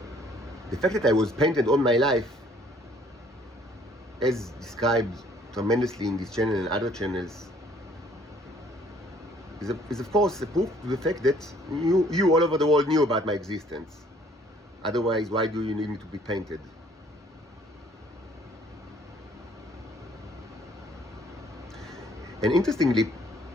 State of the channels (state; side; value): normal; both; correlation 0.60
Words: the fact that I was painted all my life, as described tremendously in this channel and other channels, is of course a proof to the fact that you all over the world knew about my existence. Otherwise, why do you need me to be painted? And interestingly,